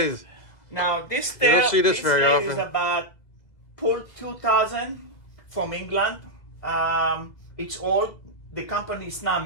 Now this you don't see this very lathe often. Is about Pull 2000 from England. It's old. The company is not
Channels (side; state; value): right; late; 2.0 ms